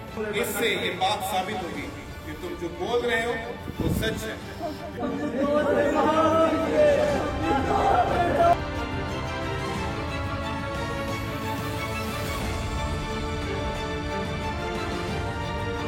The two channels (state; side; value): identical; both; correlation 1.00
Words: इससे ये बात साबित होगी कि तुम जो बोल रहे हो वो सच है।